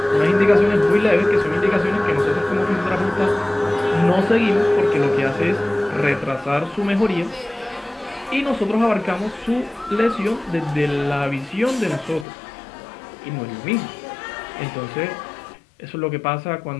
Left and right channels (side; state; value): right; drops out; at 12.2 s